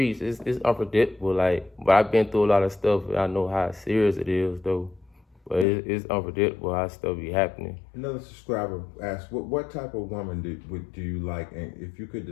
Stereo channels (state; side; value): drops out; right; at 5.7 s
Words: it's unpredictable. Like, but I've been through a lot of stuff, and I know how serious it is, though. But it's unpredictable how stuff be happening. Another subscriber asked, what type of woman do you like? And if you could